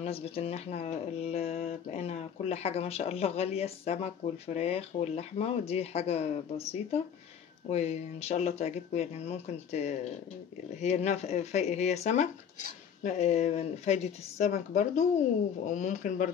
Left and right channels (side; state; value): right; quieter; 7.9 dB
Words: إن احنا بقينا كل حاجة ما شاء الله غالية، السمك والفراخ واللحمة، ودي حاجة بسيطة وإن شاء الله تعجبكم. يعني ممكن هي سمك، فايدة السمك برضو، وممكن